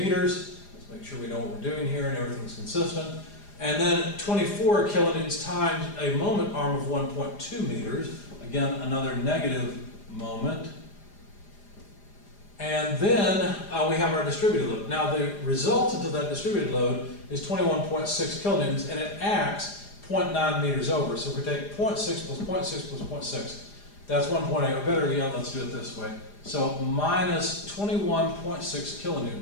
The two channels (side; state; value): right; late; 4.9 ms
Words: Let's make sure we know what we're doing here and everything's consistent. And then 24 kilonewtons times a moment arm of 1.2 meters. Again, another negative moment. And then we have our distributed load. Now the resultant of that distributed load is 21.6 kilonewtons, and it acts 0.9 meters over. So if we take 0.6 plus 0.6 plus 0.6, that's 1.8, or better yet, let's do it this way. So minus 21.6